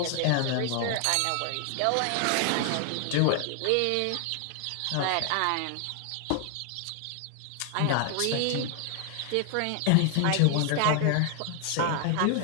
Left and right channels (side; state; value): both; different; correlation 0.00